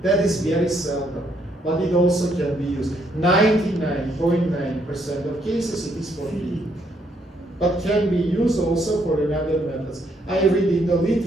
That is very seldom. But it also can be used. 99.9% of cases it is for feeding. But can be used also for another methods. I read in the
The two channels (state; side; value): normal; both; correlation 0.72